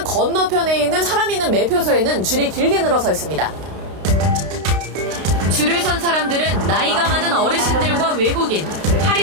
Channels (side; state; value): left; late; 32 ms